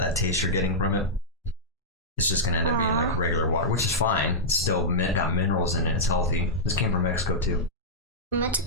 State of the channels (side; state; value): both; normal; correlation -0.10